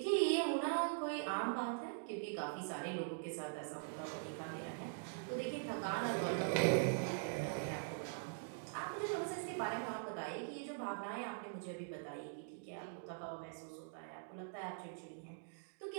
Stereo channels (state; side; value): silent; left; digital silence